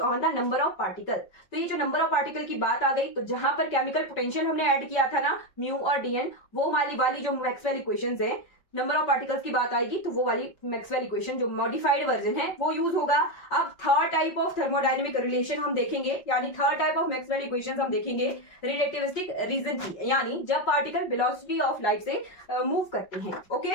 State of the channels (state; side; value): late; right; 5.3 ms